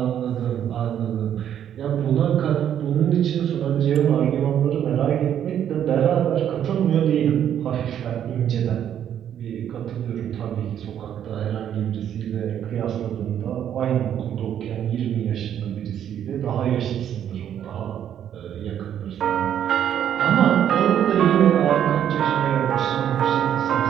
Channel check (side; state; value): left; quieter; 9.8 dB